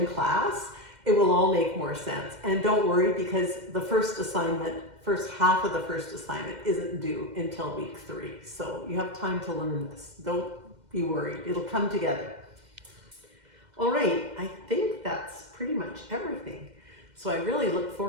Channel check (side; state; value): left; late; 2.1 ms